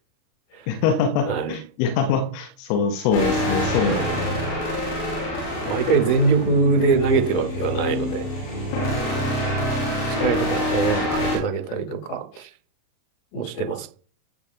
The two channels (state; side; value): late; right; 38 ms